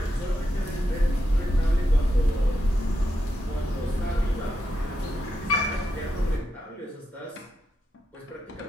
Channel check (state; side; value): normal; both; correlation 0.85